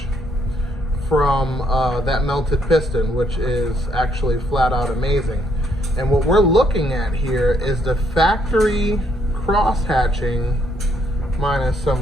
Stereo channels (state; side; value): normal; both; correlation 0.72